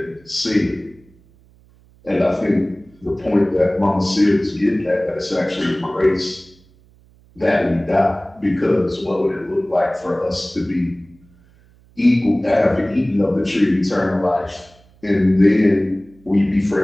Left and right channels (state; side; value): noise; right; hum, 29 dB below the sound